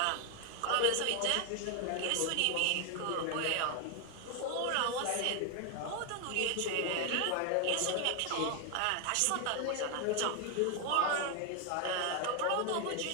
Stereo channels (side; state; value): both; different; correlation 0.00